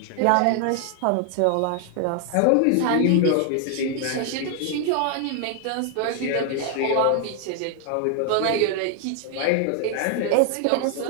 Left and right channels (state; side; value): different; both; correlation 0.00